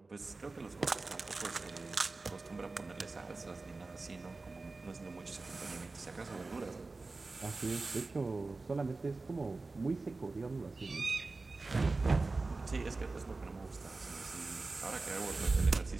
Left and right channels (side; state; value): left; quieter; 3.6 dB